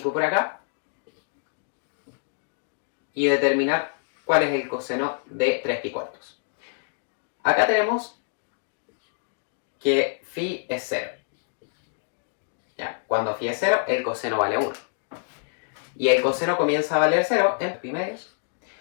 por acá y determinar cuál es el coseno de 3 pi cuartos. Acá tenemos que phi es 0. ¿Ya? Cuando phi es 0, el coseno vale 1. Y el coseno comienza a valer 0 en pi medios.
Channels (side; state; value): right; silent; digital silence